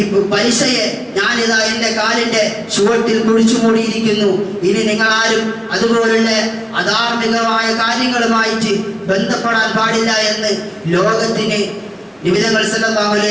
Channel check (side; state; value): both; identical; correlation 1.00